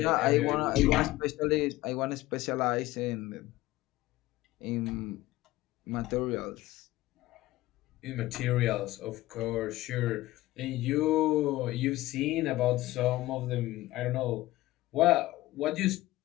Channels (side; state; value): right; quieter; 17.4 dB